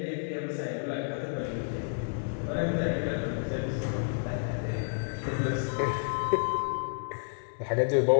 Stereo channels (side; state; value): right; silent; digital silence